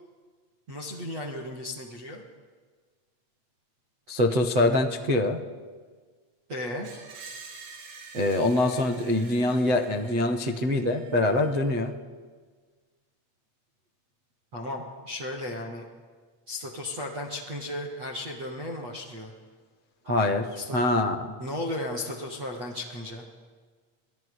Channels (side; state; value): left; late; 8.2 ms